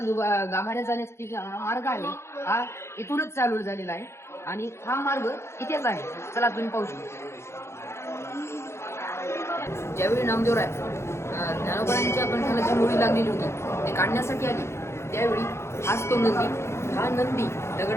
गाभाऱ्यात जाण्याचा मार्ग आहे हा इथूनच चालू झालेला आहे. आणि हा मार्ग इथेच आहे. चला तुम्ही पाहू शकता. ज्यावेळी नामदेवराय ज्ञानोबारायांच्या कंठाला जी मुळी लागलेली होती ते काढण्यासाठी आली त्यावेळी हाच तो नंदी. हा नंदी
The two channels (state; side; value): late; right; 0.13 ms